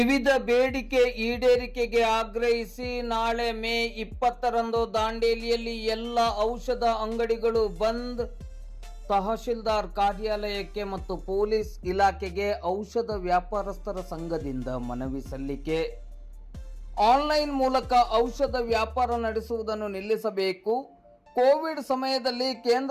ಬೇಡಿಕೆ ಈಡೇರಿಕೆಗೆ ಆಗ್ರಹಿಸಿ ನಾಳೆ ಮೇ 20ರಂದು ದಾಂಡೇಲಿಯಲ್ಲಿ ಎಲ್ಲ ಔಷಧ ಅಂಗಡಿಗಳು ಬಂದ್. ತಹಶೀಲ್ದಾರ್ ಕಾರ್ಯಾಲಯಕ್ಕೆ ಮತ್ತು ಪೊಲೀಸ್ ಇಲಾಖೆಗೆ ಔಷಧ ವ್ಯಾಪಾರಸ್ಥರ ಸಂಘದಿಂದ ಮನವಿ ಸಲ್ಲಿಕೆ. ಆನ್ಲೈನ್ ಮೂಲಕ ಔಷಧ ವ್ಯಾಪಾರ ನಡೆಸುವುದನ್ನು ನಿಲ್ಲಿಸಬೇಕು. ಕೋವಿಡ್ ಸಮಯದಲ್ಲಿ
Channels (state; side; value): identical; both; correlation 1.00